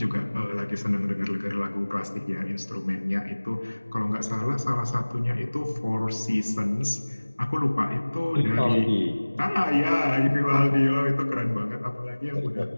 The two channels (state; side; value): inverted; both; correlation -1.00